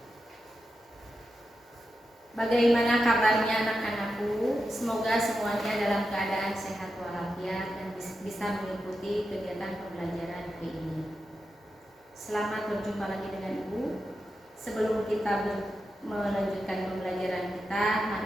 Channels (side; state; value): both; normal; correlation 0.89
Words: Bagaimana kabarnya anak-anakku? Semoga semuanya dalam keadaan sehat walafiat dan bisa mengikuti kegiatan pembelajaran hari ini. Selamat berjumpa lagi dengan Ibu. Sebelum kita melanjutkan pembelajaran kita,